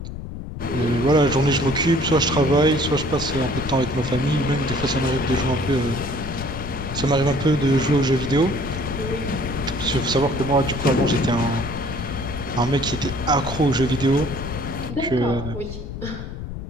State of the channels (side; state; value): left; noise; rumble, 8 dB below the sound